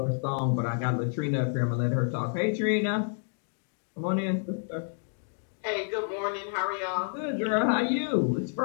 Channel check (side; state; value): right; silent; digital silence